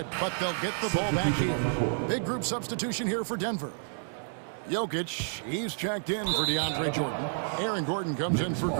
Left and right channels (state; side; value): silent; left; digital silence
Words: but they'll get the ball back here. Big group substitution here for Denver. Jokic, he's checked in for DeAndre Jordan. Aaron Gordon comes in for